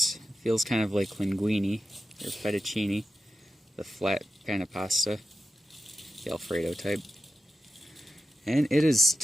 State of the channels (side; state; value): both; normal; correlation 0.91